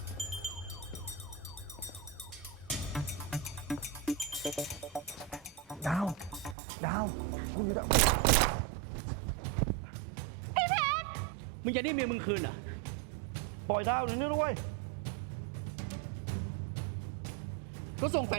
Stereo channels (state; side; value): drops out; left; at 6.6 s